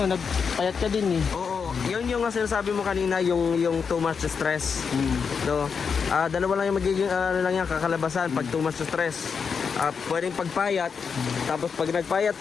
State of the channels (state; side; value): quieter; right; 6.0 dB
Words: ka din eh. Oo, yun yung sinasabi mo kanina, yung too much stress. No? Dalawa lang yung magiging kakalabasan pag too much stress. Pwedeng pagpayat, tapos pag nagpayat